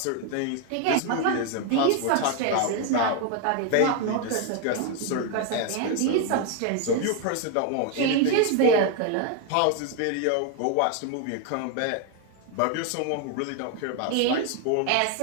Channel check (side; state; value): both; different; correlation 0.01